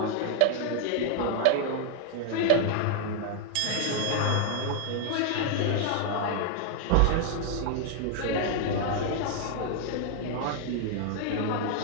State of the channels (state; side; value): different; both; correlation 0.00